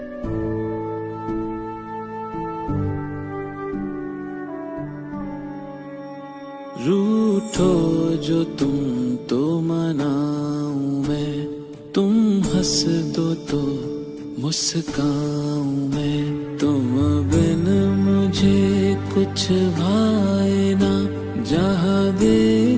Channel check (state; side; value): identical; both; correlation 1.00